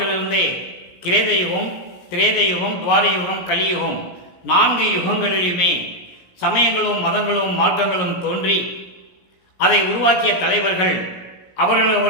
கிரேதயுகம், திரேதயுகம், துவாரயுகம், கலியுகம் 4 யுகங்களிலுமே சமயங்களும் மதங்களும் மார்க்கங்களும் தோன்றி அதை உருவாக்கிய தலைவர்கள்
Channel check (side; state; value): right; late; 17 ms